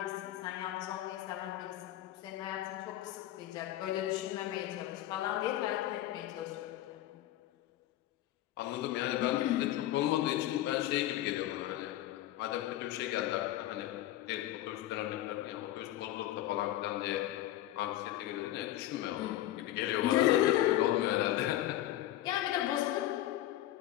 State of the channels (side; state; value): right; quieter; 14.0 dB